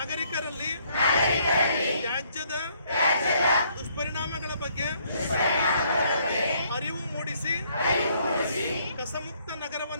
ತ್ಯಾಜ್ಯದ ದುಷ್ಪರಿಣಾಮಗಳ ಬಗ್ಗೆ ಅರಿವು ಮೂಡಿಸಿ ಕಸಮುಕ್ತ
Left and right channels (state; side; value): inverted; both; correlation -0.67